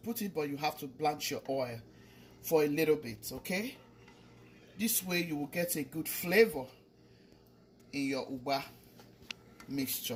it, but you have to blanch your oil for a little bit, okay? This way you will get a good flavor in your Ukpa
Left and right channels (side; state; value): both; identical; correlation 1.00